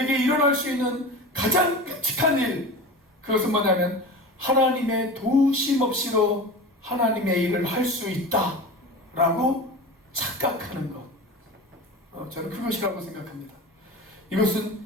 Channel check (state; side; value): normal; both; correlation 0.31